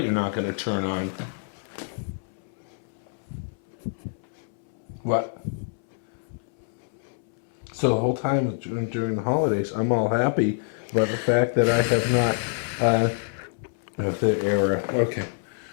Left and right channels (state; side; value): silent; right; 61 dB below the other